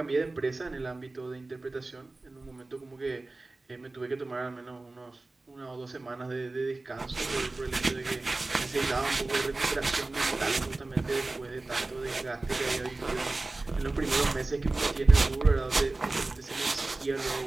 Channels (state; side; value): quieter; left; 3.2 dB